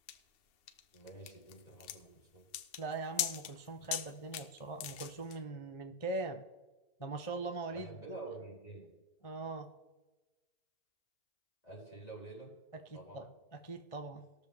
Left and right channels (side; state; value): right; late; 2.7 ms